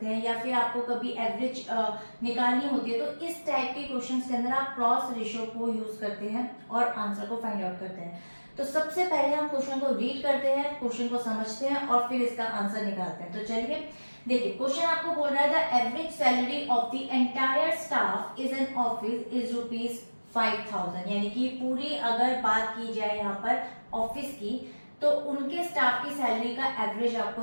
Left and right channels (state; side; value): inverted; both; correlation -1.00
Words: हैं, या फिर आपको कभी एवरेज निकालनी होती है तो इस टाइप के क्वेश्चंस के अंदर आप क्रॉस रेशियो को यूज करते हैं और आंसर को फाइंड आउट करते हैं। तो सबसे पहले हम क्वेश्चन को रीड करते हैं, क्वेश्चन को समझते हैं और फिर इसका आंसर निकालते हैं। तो चलिए देखिए, क्वेश्चन आपको बोल रहा है the average salary of the entire staff is an office is ₹5,000। यानी कि पूरी अगर बात की जाए यहाँ पर ऑफिस की तो उनके स्टाफ की सैलरी का एवरेज आपको